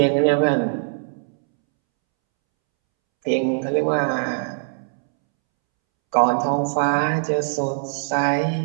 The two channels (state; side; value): silent; left; 65 dB below the other